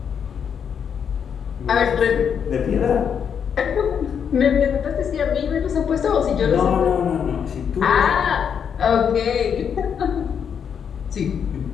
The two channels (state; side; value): quieter; right; 7.5 dB